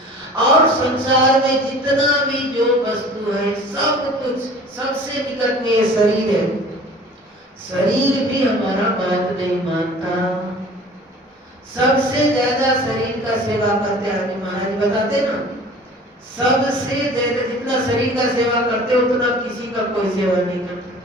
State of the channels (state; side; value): normal; both; correlation 0.45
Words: और संसार में जितना भी जो वस्तु है, सब कुछ, सबसे निकट में ये शरीर है, शरीर भी हमारा बात नहीं मानता। सबसे ज्यादा शरीर का सेवा करते हैं महाराज बताते ना, सबसे ज्यादा जितना शरीर का सेवा करते उतना किसी का कोई सेवा नहीं